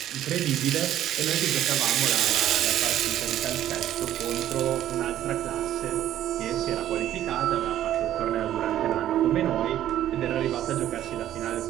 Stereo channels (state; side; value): quieter; left; 12.1 dB